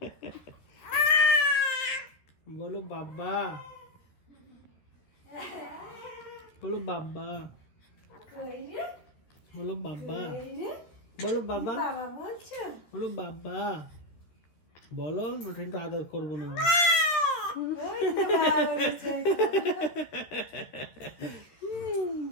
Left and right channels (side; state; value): right; late; 13 ms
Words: বলো বাবা, বলো বাবা, বলো বাবা, বলো বাবা, বলো বাবা, বলো। ওটা একটু আদর করবো না